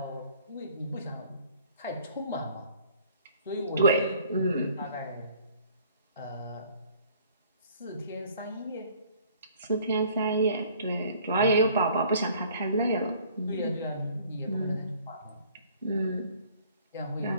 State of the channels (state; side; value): inverted; both; correlation -0.56